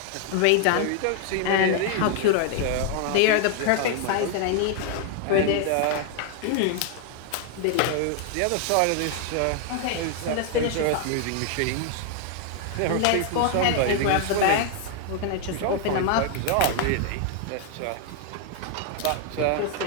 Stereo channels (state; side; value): different; both; correlation 0.00